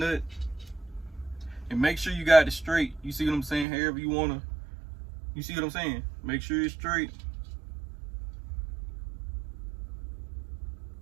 and make sure you got it straight. You see what I'm saying? However you wanna, you see what I'm saying? Make sure it's straight.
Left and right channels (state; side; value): drops out; left; at 3.7 s